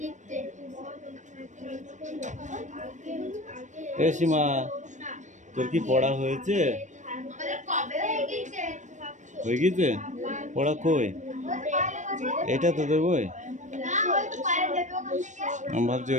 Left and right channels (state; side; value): late; left; 0.35 ms